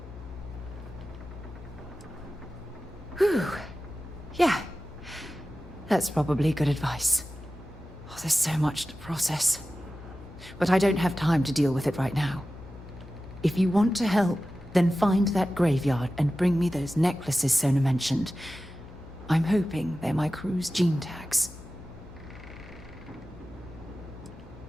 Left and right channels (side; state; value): left; noise; hum, 16 dB below the sound